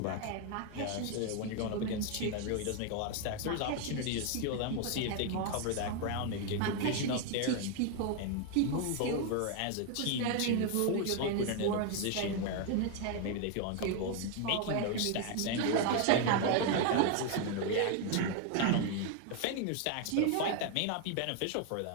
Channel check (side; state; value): both; different; correlation 0.01